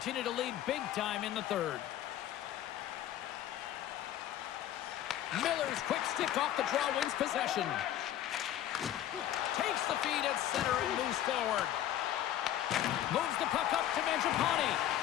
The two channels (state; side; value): quieter; right; 12.1 dB